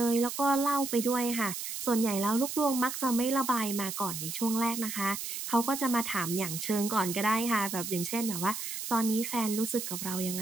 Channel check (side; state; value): right; noise; hiss, 6 dB below the sound